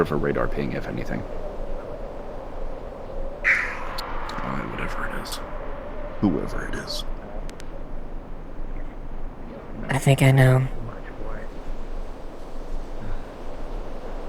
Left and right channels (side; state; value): both; identical; correlation 1.00